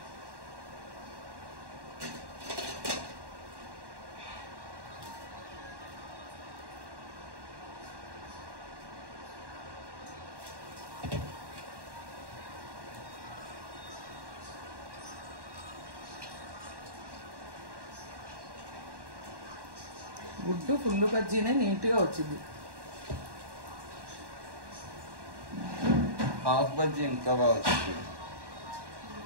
గుడ్డు ఫుల్ బజ్జీనే నీట్గా వచ్చింది. హాఫ్ బజ్జీ ఇంకా బాగా వచ్చింది.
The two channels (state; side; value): late; left; 1.1 ms